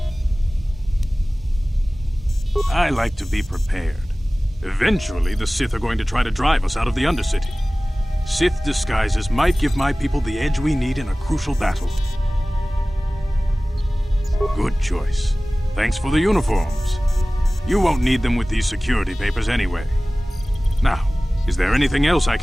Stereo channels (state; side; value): normal; both; correlation 0.98